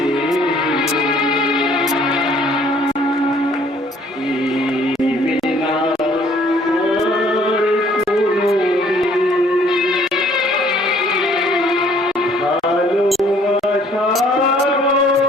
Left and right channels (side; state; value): both; normal; correlation 0.59